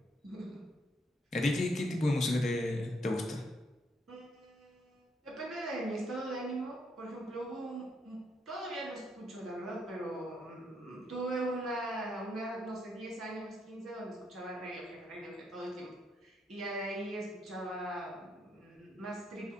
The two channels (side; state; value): both; normal; correlation 0.75